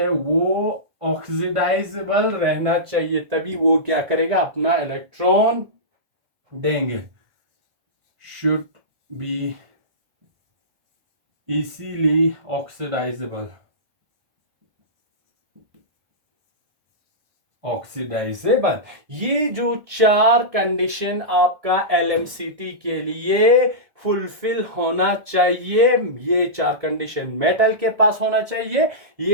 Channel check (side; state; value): left; late; 1.6 ms